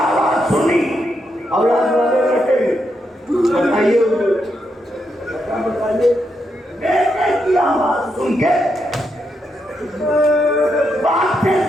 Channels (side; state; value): both; normal; correlation 0.81